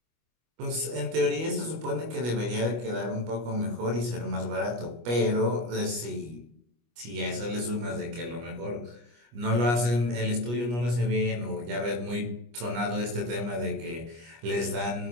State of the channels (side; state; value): left; late; 25 ms